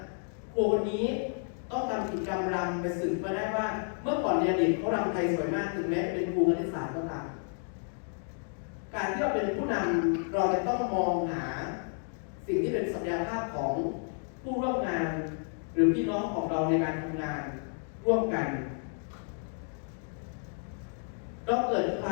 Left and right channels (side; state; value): right; silent; 57 dB below the other